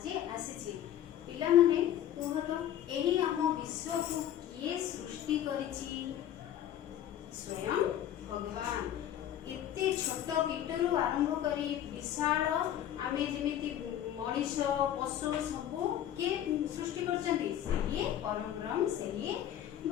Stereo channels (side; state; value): right; quieter; 11.1 dB